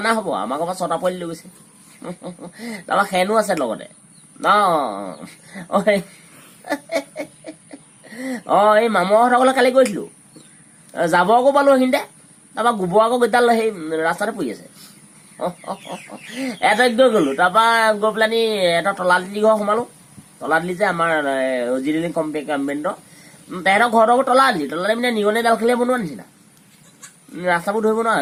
হ'ব আমাৰ ঘৰৰ পৰা 6টা পোৱালি লৈ গৈছে তাৰপৰা খেনো আছে লগতে এই মামুহঁতৰ ঘৰলৈ কালি গৈছিলো যাব আকৌ পালো সেইখিনিতে তাৰপৰা গোবৰ আকৌ গোটাল সেই ৰাস্তাতে পৰি আছে এটাক গৈ গ'লো তাৰপৰা গৈ পেলানি এটা তলাতলি ঘৰ সোমালো তলাতলি যে আমাৰ জিৰণি কম্পেণ্টৰ তেহেঁতৰ ঘৰটো তলাতলি মানে নিগনি ডাল খেলিয়ে বনোৱা নিচিনা ৰাস্তাবোৰ ধৰিব নোৱাৰে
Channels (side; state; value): both; identical; correlation 1.00